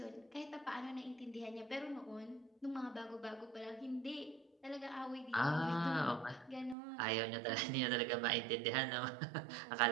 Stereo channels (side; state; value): left; drops out; at 6.8 s